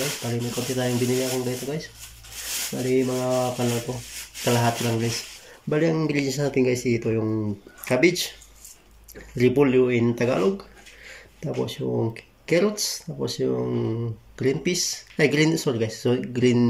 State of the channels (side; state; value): both; identical; correlation 1.00